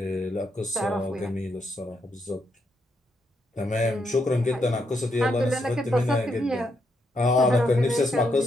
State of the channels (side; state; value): both; normal; correlation 0.79